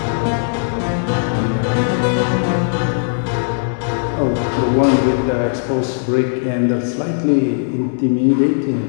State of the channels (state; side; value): silent; right; digital silence